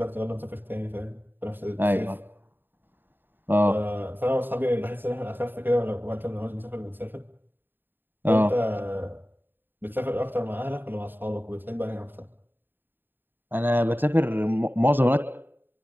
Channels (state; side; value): late; left; 0.094 ms